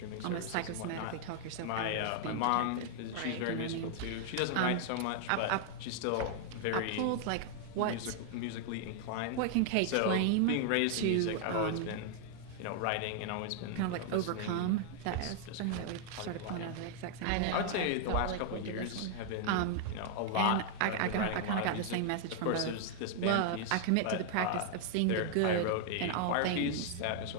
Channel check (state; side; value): different; both; correlation -0.01